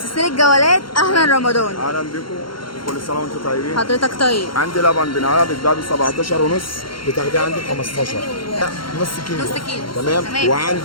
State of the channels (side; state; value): right; late; 0.73 ms